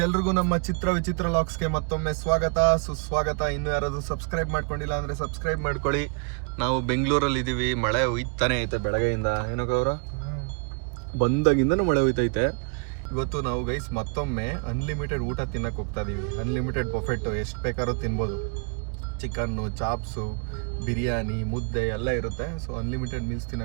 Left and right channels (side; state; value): left; quieter; 37.3 dB